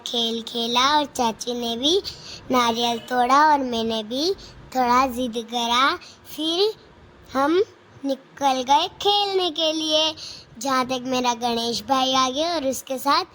खेला, और चाची ने भी नारियल तोड़ा और मैंने भी थोड़ा जिद करा। फिर हम निकल गए खेलने के लिए, जहाँ तक मेरा गणेश भाई आ गया और उसके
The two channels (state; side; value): identical; both; correlation 1.00